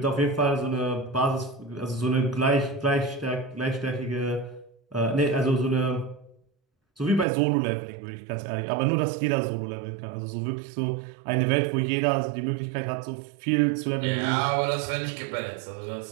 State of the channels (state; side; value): drops out; left; at 7.2 s